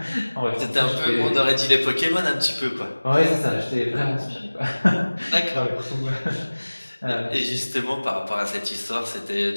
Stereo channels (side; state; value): both; inverted; correlation -1.00